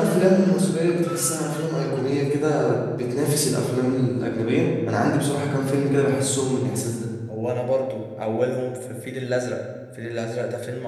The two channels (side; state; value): both; identical; correlation 1.00